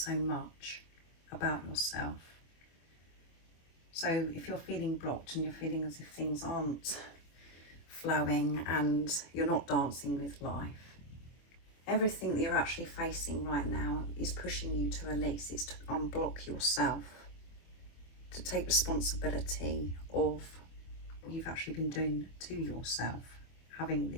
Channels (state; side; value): late; right; 24 ms